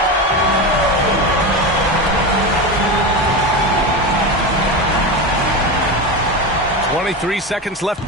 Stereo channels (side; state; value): both; normal; correlation 0.20